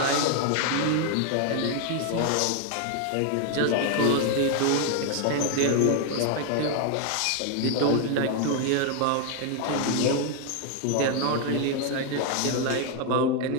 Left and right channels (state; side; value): different; both; correlation 0.00